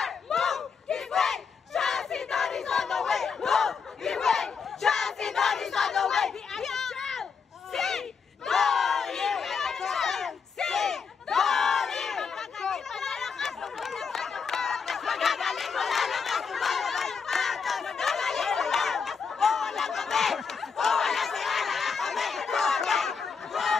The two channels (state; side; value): quieter; right; 5.8 dB